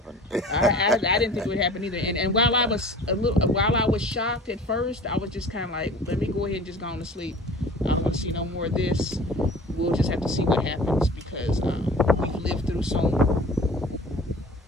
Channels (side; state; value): both; normal; correlation 0.43